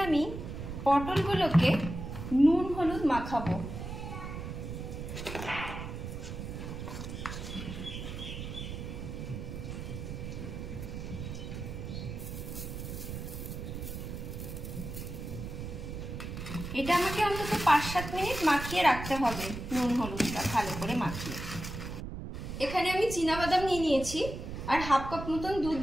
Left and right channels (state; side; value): noise; right; rumble, 7 dB below the sound